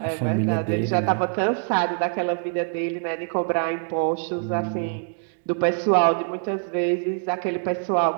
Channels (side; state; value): left; silent; 58 dB below the other